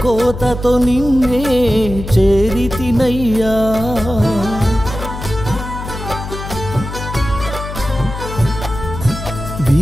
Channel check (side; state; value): left; noise; hum, 9 dB below the sound